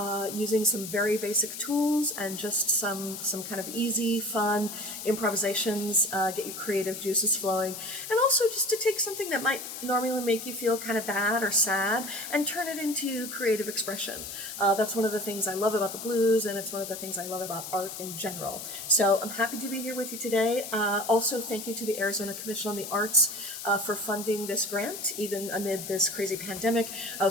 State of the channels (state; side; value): noise; left; hiss, 9 dB below the sound